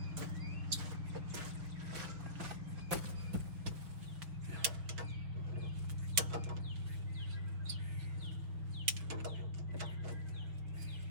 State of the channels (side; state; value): left; late; 5.9 ms